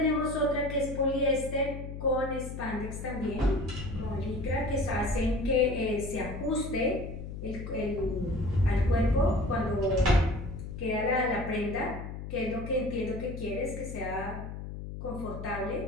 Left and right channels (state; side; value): noise; left; hum, 8 dB below the sound